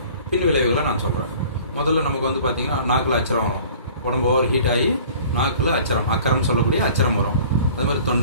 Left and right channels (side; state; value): both; inverted; correlation -0.48